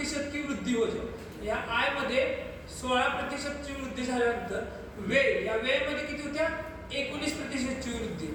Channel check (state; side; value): identical; both; correlation 1.00